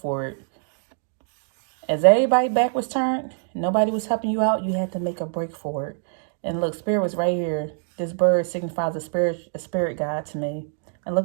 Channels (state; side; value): silent; left; digital silence